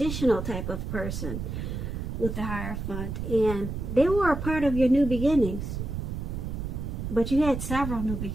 type of person with the Hierophant, and they were a part of your new beginnings. But you had several new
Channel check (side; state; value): right; noise; rumble, 5 dB below the sound